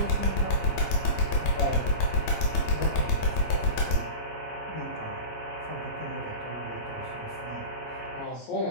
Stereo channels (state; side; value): late; right; 17 ms